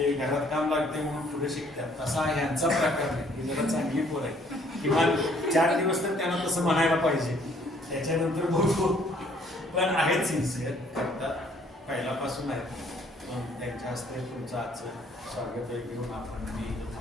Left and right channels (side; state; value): both; normal; correlation 0.62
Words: घरात काम लागते म्हणून पुढे शिकतात, तसा ह्यांचा प्रकार नाही. ही जरा चांगली पोर आहे. किमान 4 दिवस तर त्यांना तसं म्हणायला पाहिजे, त्याच्यानंतर बघू. पण आहेत सिन्सिअर, करतात, पहिल्यापासून आहेत. त्यांच्या हस्ते तुमचं आजचं स्वागत घेऊन आपण मी